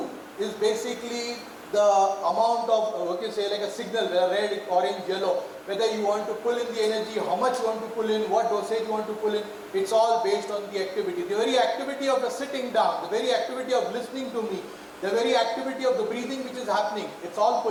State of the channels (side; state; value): both; identical; correlation 1.00